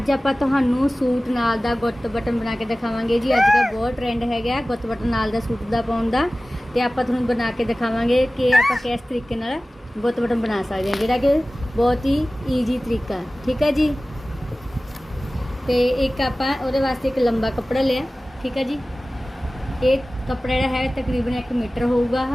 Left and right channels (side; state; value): both; normal; correlation 0.97